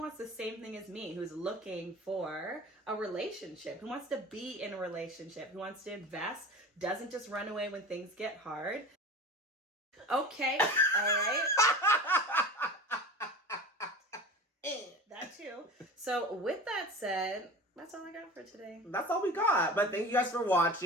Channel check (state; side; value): normal; both; correlation 0.34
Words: the same thing as me, who's looking for a relationship, who wants to be in a relationship, who wants to invest, doesn't just run away when things get hard. Okay, all right. That too. So with that said, that's all I got for today. That's all we got. But thank you guys for